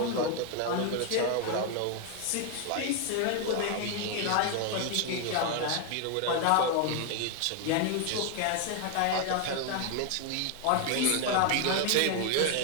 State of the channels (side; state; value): both; different; correlation 0.01